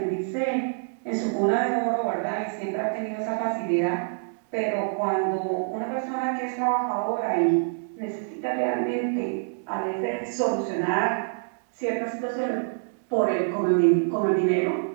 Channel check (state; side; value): silent; left; digital silence